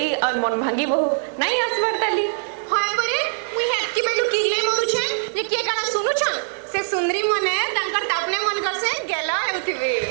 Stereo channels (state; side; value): silent; left; 58 dB below the other